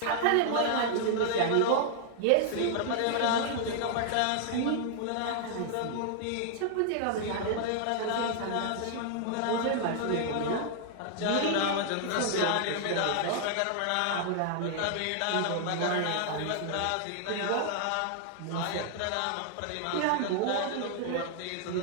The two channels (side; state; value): both; different; correlation -0.01